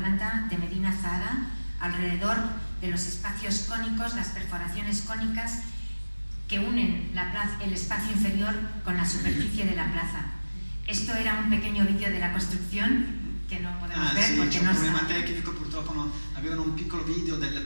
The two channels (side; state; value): both; inverted; correlation -1.00